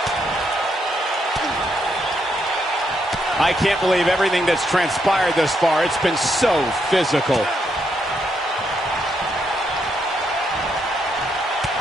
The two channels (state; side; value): normal; both; correlation 0.78